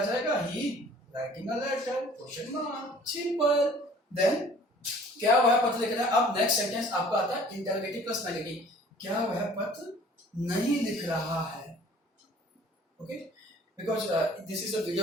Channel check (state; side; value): normal; both; correlation 0.51